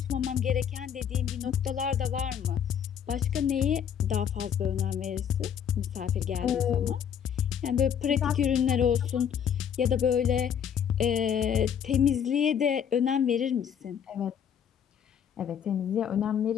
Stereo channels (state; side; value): quieter; right; 8.4 dB